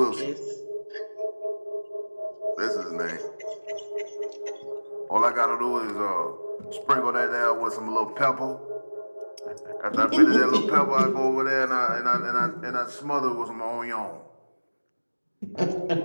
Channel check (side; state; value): both; inverted; correlation -1.00